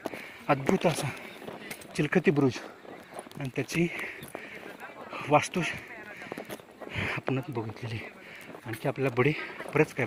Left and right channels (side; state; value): both; identical; correlation 1.00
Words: अद्भुत असा चिलखती बुरुज आणि त्याची वास्तू आपणच बघितलेली. आणखी आपल्याला बरेच काय